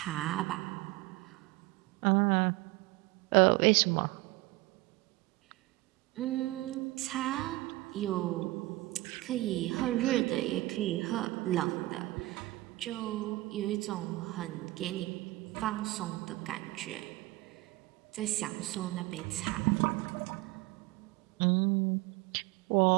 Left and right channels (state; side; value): quieter; left; 19.9 dB